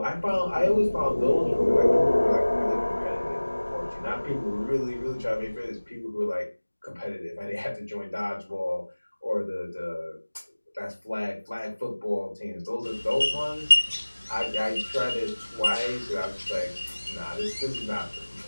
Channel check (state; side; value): inverted; both; correlation -1.00